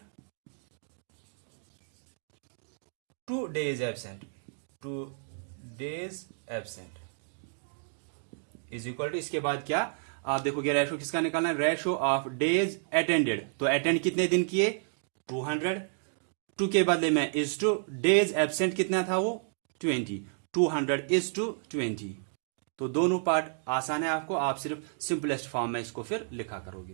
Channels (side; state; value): left; silent; digital silence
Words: to days absent, to days absent is equal to, इसके बाद क्या आप देखोगे रेशो किसका निकालना है, रेशो ऑफ डेज अटेंडेड, तो अटेंड कितने दिन किए 200, टू के बदले में इज टू, डेज एब्सेंट कितना था वो 20, 200 इज टू 20। तो दोनों पार्ट आसान है आपको, आप सिर्फ सिंपलेस्ट फॉर्म में इसको फिर लिखा